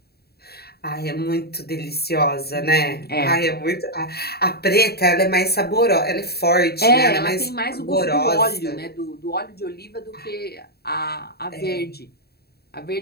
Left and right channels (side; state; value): right; late; 0.46 ms